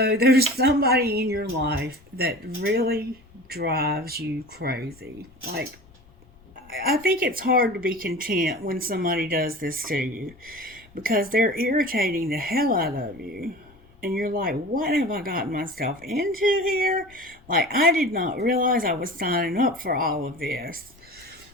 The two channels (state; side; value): noise; left; rumble, 27 dB below the sound